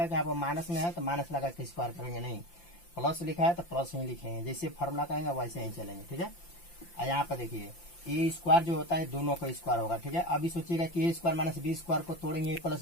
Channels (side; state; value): right; late; 5.8 ms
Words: कि यहाँ पर माइनस में है तो माइनस लगा के स्क्वायर करेंगे, नहीं, प्लस लिखा है तो प्लस ही लिखेंगे, जैसे फार्मूला करेंगे वैसे ही चलेंगे, ठीक है। और यहाँ पर देखिए ए स्क्वायर जो होता है दोनों का स्क्वायर होगा, ठीक है। अभी सोचिएगा कि ए स्क्वायर माइनस बी स्क्वायर को तोड़ेंगे ए प्लस